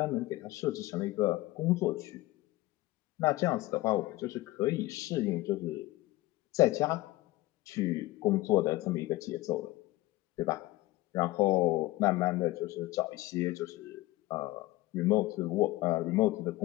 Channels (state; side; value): quieter; right; 18.4 dB